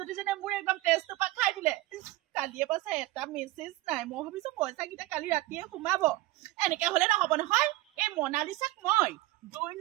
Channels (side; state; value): left; quieter; 18.2 dB